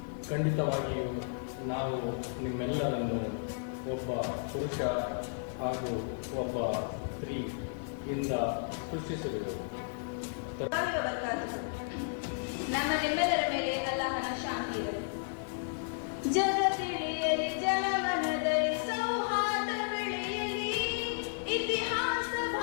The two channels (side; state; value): right; silent; digital silence